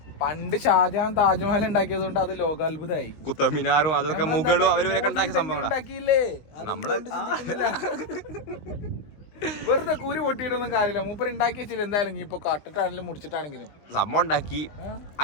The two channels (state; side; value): late; right; 20 ms